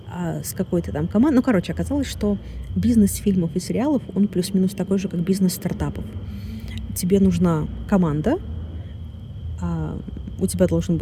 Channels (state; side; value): identical; both; correlation 1.00